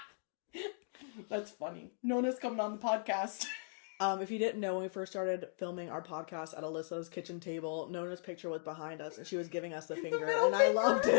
That's funny. Nona's coming on the podcast. If you didn't know, when we first started filming our podcast at Alyssa's kitchen table, Nona's picture was behind us, and she was giving us the finger, and I loved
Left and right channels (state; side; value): silent; right; digital silence